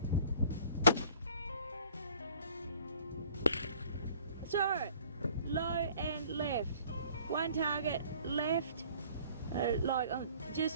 So, low and left. One target left, like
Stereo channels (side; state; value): both; inverted; correlation -0.53